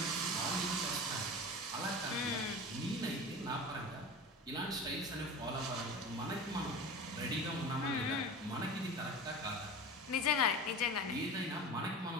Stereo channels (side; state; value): both; normal; correlation 0.31